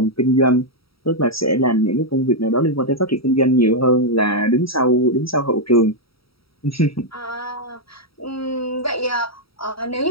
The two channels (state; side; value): late; right; 0.75 ms